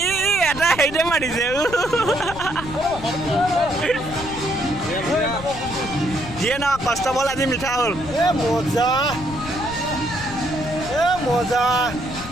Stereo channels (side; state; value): left; noise; rumble, 12 dB below the sound